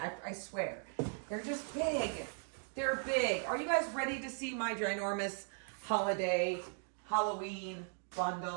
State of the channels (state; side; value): silent; left; 52 dB below the other